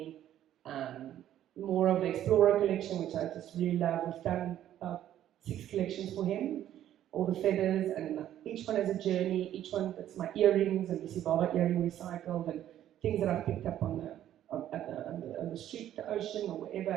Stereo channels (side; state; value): left; quieter; 11.7 dB